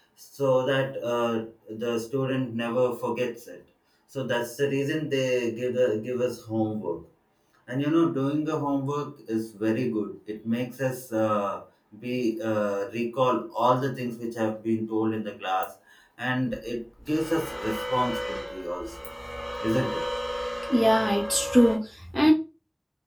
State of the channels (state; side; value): identical; both; correlation 1.00